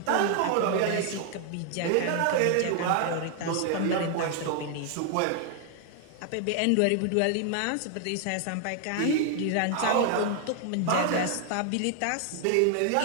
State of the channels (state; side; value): different; both; correlation 0.00